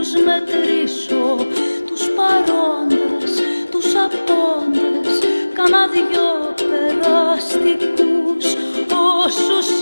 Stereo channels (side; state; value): both; inverted; correlation -1.00